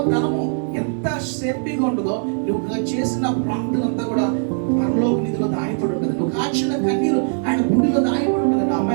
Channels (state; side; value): silent; left; 62 dB below the other